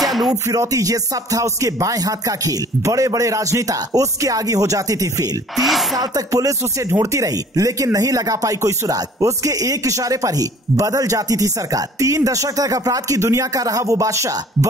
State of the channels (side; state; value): both; normal; correlation 0.52